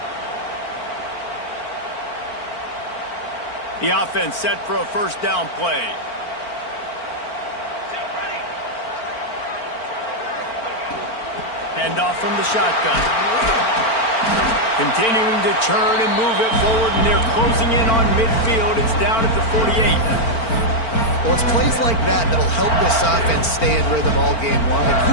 The offense set for a first down play. Handoff from the shotgun. Continuing to turn and move it forward, and they're closing in on midfield. It's down at the 48. Well, it's plays like that that'll help this offense stay in rhythm all game long. If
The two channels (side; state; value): right; late; 4.4 ms